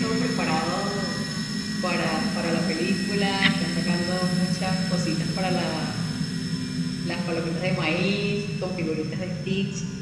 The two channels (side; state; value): both; identical; correlation 1.00